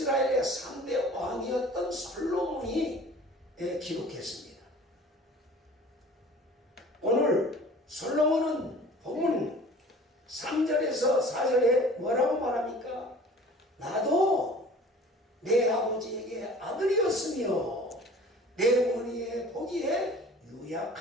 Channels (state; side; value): normal; both; correlation 0.45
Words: 3대 왕이었던 솔로몬이 기록했습니다. 오늘 솔로몬은 본문 3절에서 4절에 뭐라고 말합니까? 나도 내 아버지에게 아들이었으며 내 어머니의 보기에